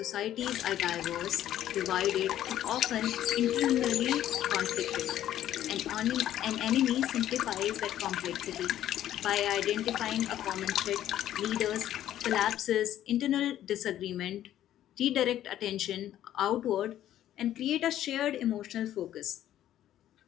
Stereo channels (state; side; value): quieter; right; 12.1 dB